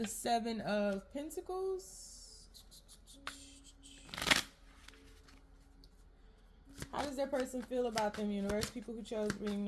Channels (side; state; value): both; identical; correlation 1.00